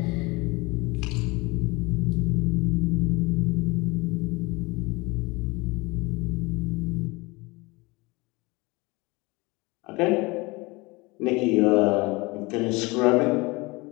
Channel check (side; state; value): right; quieter; 24.4 dB